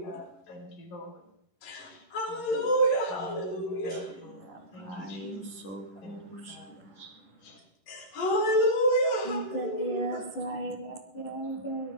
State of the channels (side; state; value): right; late; 11 ms